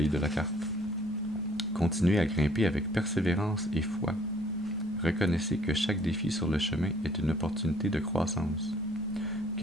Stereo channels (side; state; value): both; normal; correlation 0.60